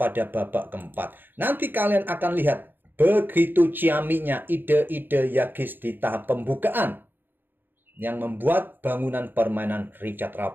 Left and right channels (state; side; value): late; left; 0.094 ms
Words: babak keempat. Nanti kalian akan lihat begitu ciaminya ide-ide Yakiz di tahap pembukaan yang membuat bangunan permainan Richard